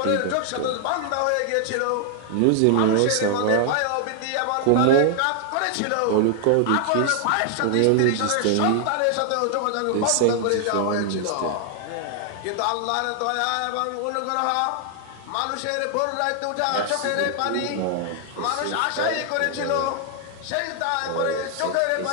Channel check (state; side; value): different; both; correlation 0.00